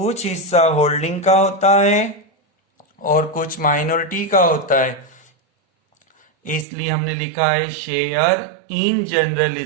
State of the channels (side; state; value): left; drops out; at 6.7 s